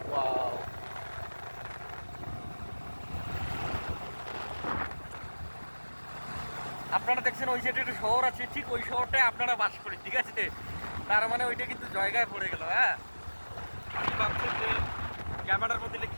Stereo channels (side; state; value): both; inverted; correlation -1.00